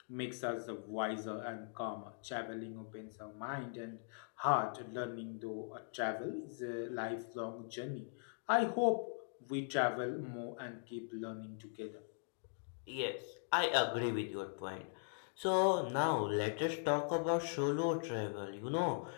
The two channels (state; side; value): silent; right; digital silence